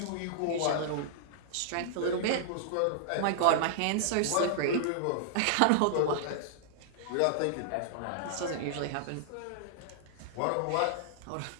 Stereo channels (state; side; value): different; both; correlation -0.01